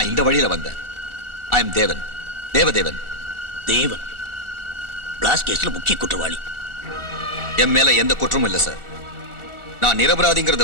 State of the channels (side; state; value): left; late; 1.4 ms